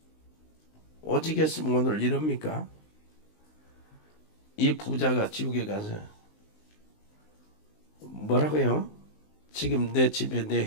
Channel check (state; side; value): late; right; 19 ms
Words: 오직 했으면 오늘 이럽니까? 이 부자가 지옥에 가서 뭐라고요? 지금 내 집에 내